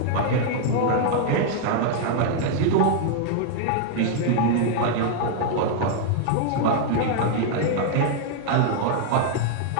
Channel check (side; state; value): both; different; correlation 0.00